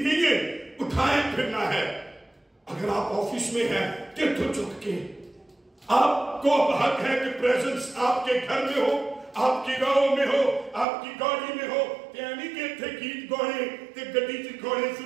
है, उठाए फिरना है। अगर आप ऑफिस में हैं, तो चुक के आपको हक है कि प्रेजेंस आपके घर में हो, आपकी गाँव में हो, आपकी गाड़ी में हो। यानी कि इत्थे गीत गाने ते गड्डी च गाने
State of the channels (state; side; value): drops out; left; at 10.9 s